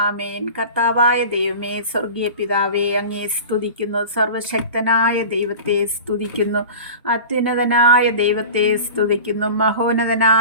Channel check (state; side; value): inverted; both; correlation -0.36